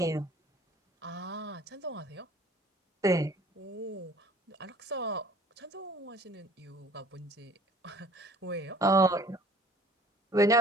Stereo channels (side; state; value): both; normal; correlation 0.52